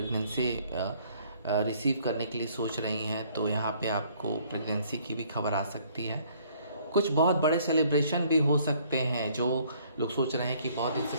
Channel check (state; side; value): inverted; both; correlation -0.61